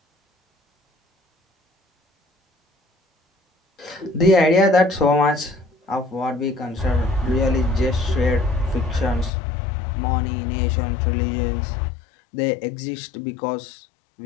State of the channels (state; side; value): drops out; right; at 9.3 s